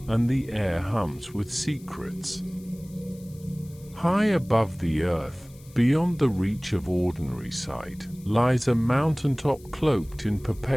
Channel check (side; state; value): left; noise; hiss, 25 dB below the sound